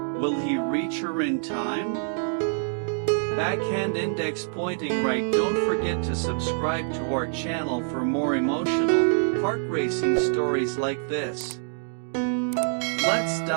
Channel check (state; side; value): silent; left; digital silence